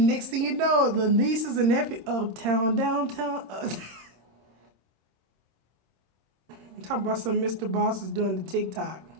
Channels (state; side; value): late; left; 27 ms